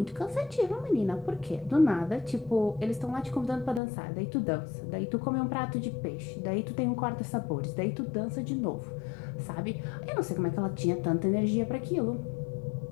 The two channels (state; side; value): drops out; right; at 3.8 s